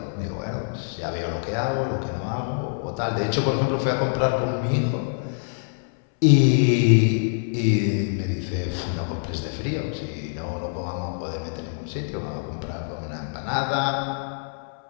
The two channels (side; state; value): right; silent; 62 dB below the other